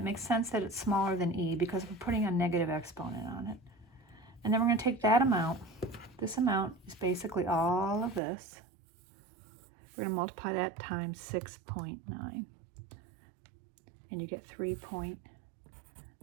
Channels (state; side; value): drops out; left; at 8.2 s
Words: makes sense that it's smaller than e because we're putting a negative exponent on it. And then we're going to take that amount. This amount is basically all of this. We're going to multiply that times 6.9. And you get